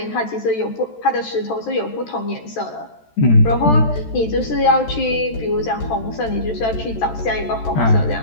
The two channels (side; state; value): right; late; 13 ms